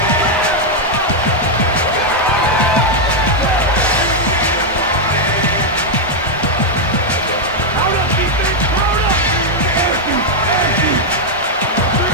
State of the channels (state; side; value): normal; both; correlation -0.01